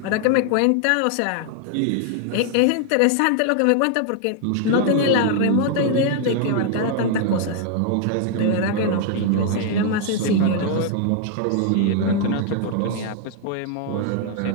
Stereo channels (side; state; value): both; different; correlation 0.00